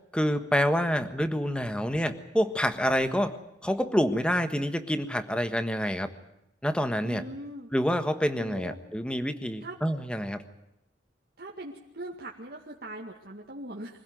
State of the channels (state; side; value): normal; both; correlation 0.89